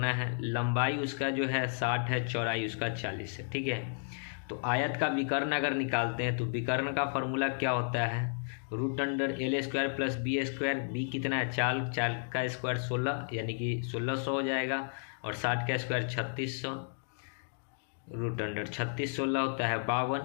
है, लंबाई उसका जो है 60 है, चौड़ाई उसका 40 है। ठीक है, तो आयत का विकर्ण अगर निकालते हैं तो विकर्ण का फॉर्मूला क्या होता है, √L² प्लस B²। बी कितना है, 4 4 का स्क्वायर 16, यानी कि 1600 हो जाएगा, और 60 का स्क्वायर 3600, √36 16 होता है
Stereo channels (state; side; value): silent; right; digital silence